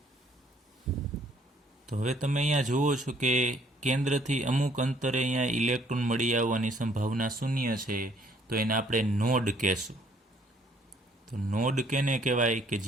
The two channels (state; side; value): normal; both; correlation 0.63